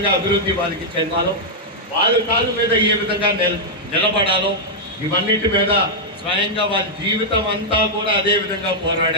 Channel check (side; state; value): both; normal; correlation -0.05